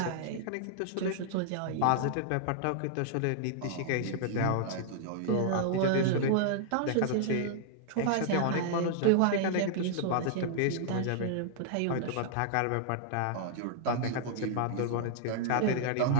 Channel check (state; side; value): different; both; correlation -0.01